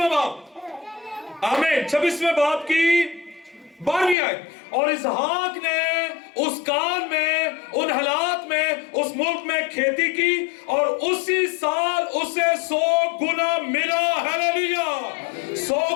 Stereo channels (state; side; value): drops out; right; at 4.2 s